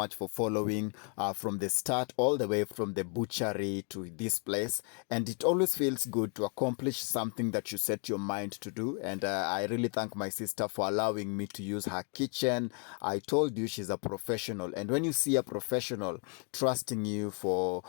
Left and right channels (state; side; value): quieter; right; 39.1 dB